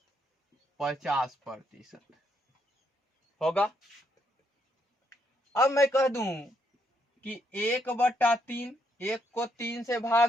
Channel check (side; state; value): both; normal; correlation 0.75